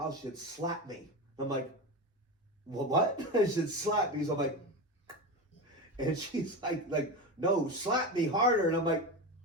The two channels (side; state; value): both; normal; correlation 0.21